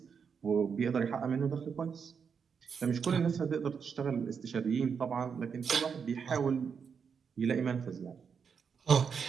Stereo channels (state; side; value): quieter; left; 6.4 dB